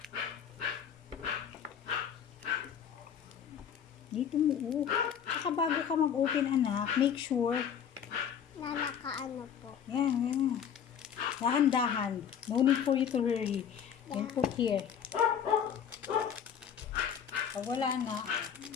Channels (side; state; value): right; quieter; 8.2 dB